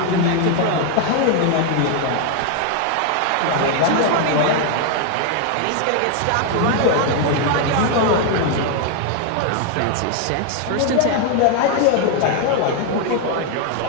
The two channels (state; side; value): different; both; correlation 0.01